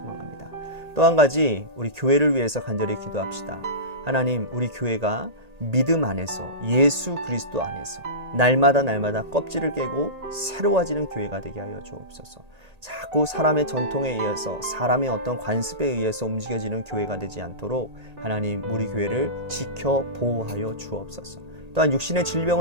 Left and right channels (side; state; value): left; late; 1.8 ms